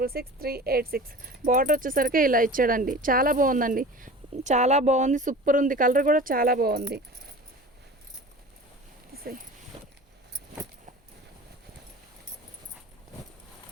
బార్డర్ వచ్చేసరికి ఇలా ఇచ్చాడండి. చాలా బాగుందండి, చాలా బాగుంది, సూపర్ ఉంది. కలర్ కూడా చాలా బాగుంది.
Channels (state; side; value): normal; both; correlation 0.38